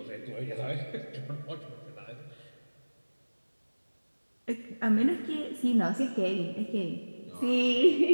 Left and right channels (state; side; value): inverted; both; correlation -1.00